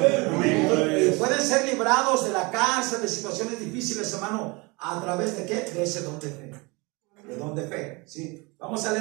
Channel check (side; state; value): left; quieter; 26.7 dB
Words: Y pueden ser librados de la cárcel, de situaciones difíciles, hermano, a través de ¿qué? De ese don de fe. De don de fe, ¿sí? Vamos a